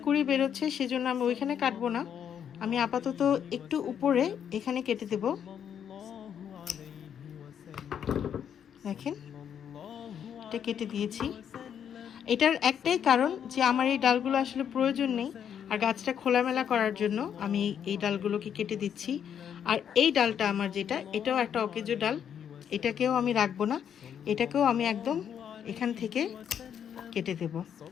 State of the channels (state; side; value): quieter; right; 8.6 dB